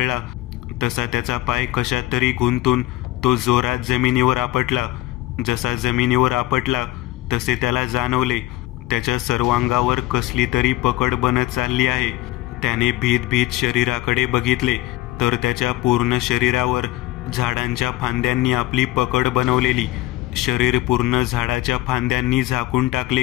तसा त्याचा पाय कशात तरी गुंतून तो जोरात जमिनीवर आपटला. जसा जमिनीवर आपटला तसे त्याला जाणवले त्याच्या सर्वांगावर कसली तरी पकड बनत चालली आहे. त्याने भीत भीत शरीराकडे बघितले तर त्याच्या पूर्ण शरीरावर झाडांच्या फांद्यांनी आपली पकड बनवलेली. शरीर पूर्ण झाडाच्या फांद्यांनी झाकून टाकले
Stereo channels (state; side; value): quieter; right; 17.0 dB